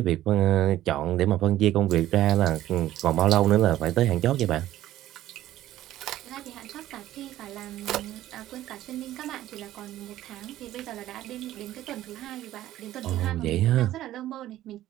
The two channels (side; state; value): left; quieter; 13.9 dB